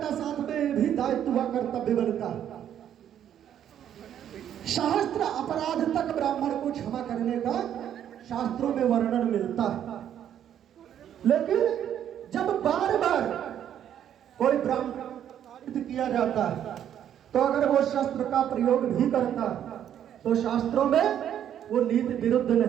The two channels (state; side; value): quieter; left; 10.0 dB